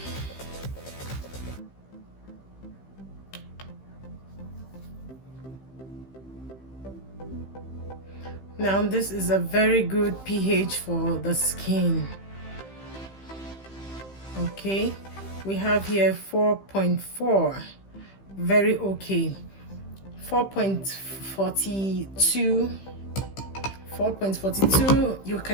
Now this is a very good pH for the skin. Okay, we have here 4.4, very okay. 4.42, 4.42. You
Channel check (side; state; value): right; late; 15 ms